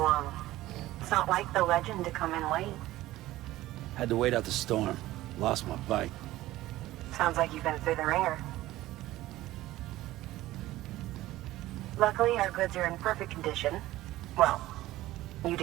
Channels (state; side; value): quieter; left; 16.3 dB